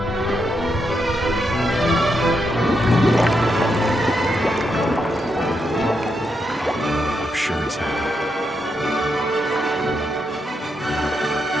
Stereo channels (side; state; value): both; normal; correlation 0.82